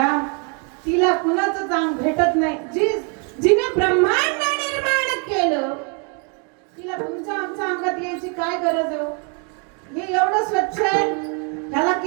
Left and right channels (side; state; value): left; quieter; 36.8 dB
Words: तिला कुणाचं चांग भेटत नाही. जिने ब्रह्मांड निर्माण केलं तिला तुमच्या आमच्या अंगात यायची काय गरज आहे? हे एवढं स्वच्छ आहे, ह्याला